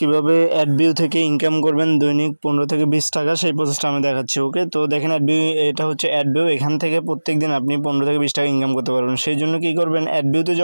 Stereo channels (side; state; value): both; inverted; correlation -1.00